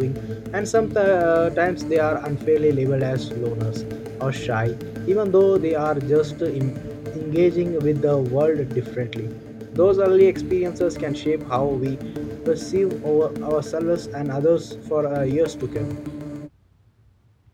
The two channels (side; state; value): both; identical; correlation 1.00